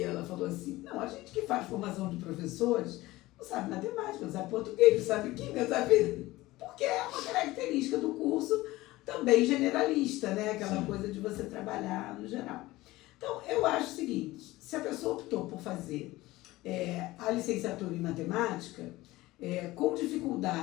ela falou assim, não, a gente que faz formação de professores não sabe matemática, não sabe português, não sabe química, não sabe... Porque é uma característica do curso também generalista, né? Aquela coisa de você trabalhar no geral. Então, eu acho o seguinte, se a pessoa optou por fazer a licenciatura em matemática, com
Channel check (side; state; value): right; quieter; 18.6 dB